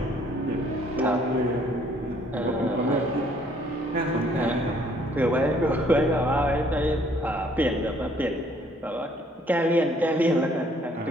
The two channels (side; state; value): both; normal; correlation 0.62